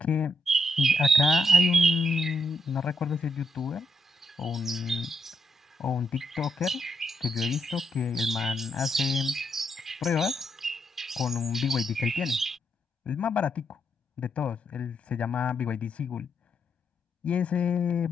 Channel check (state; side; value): normal; both; correlation 0.79